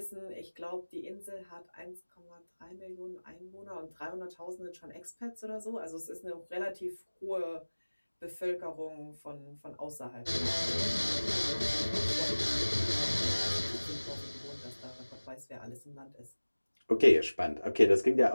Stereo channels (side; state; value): both; inverted; correlation -1.00